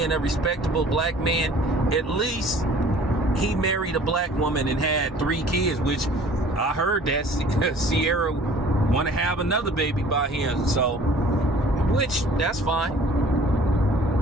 a respectable black man, at least he married a black woman and had 3 kids, which I heard that Sierra want to have another baby by him. So, which, that's fine.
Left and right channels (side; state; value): both; normal; correlation 0.50